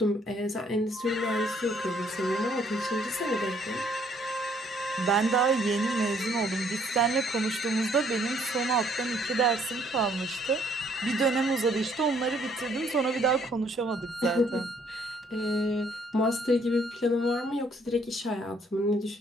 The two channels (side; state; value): both; normal; correlation 0.65